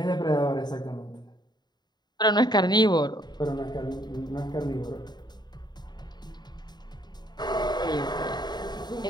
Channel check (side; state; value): right; late; 0.20 ms